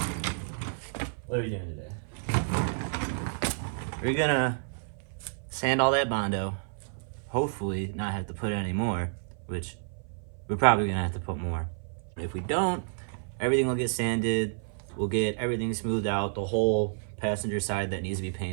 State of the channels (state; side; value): silent; left; 55 dB below the other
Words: what are we doing today? We're gonna sand all that Bondo. Hopefully not have to put any more, which we're probably gonna have to put more. If we don't, everything will get sanded. We'll get everything smoothed out. The whole passenger side that needs to be